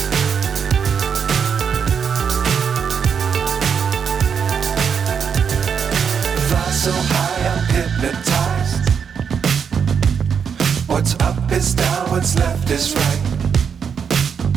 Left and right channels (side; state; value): left; quieter; 6.9 dB